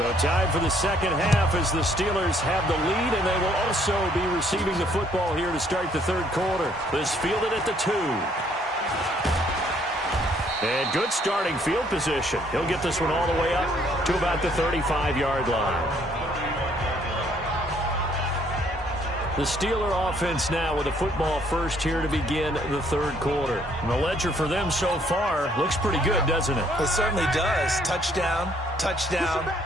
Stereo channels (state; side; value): normal; both; correlation 0.65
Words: tied for the second half as the Steelers have the lead, and they will also be receiving the football here to start the 3rd quarter. This fielded at the 2. And good starting field position. He'll get this one all the way up to about the 35-yard line. The Steeler offense now with a football first here to begin the third quarter. And the ledger for them so far looks pretty good, doesn't it? It certainly does. Touchdown, touchdown,